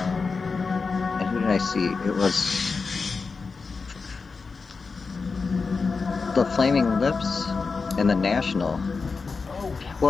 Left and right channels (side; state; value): right; quieter; 4.6 dB